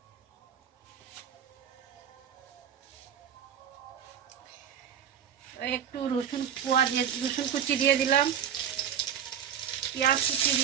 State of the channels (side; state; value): left; quieter; 8.8 dB